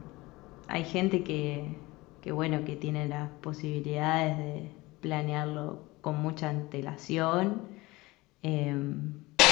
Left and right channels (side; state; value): right; quieter; 21.2 dB